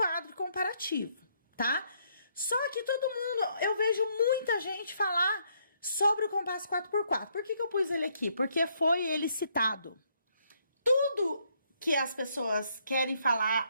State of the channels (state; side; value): inverted; both; correlation -0.71